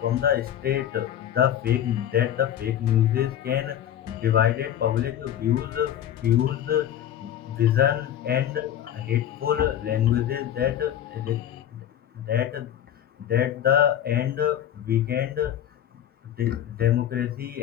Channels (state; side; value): quieter; right; 10.6 dB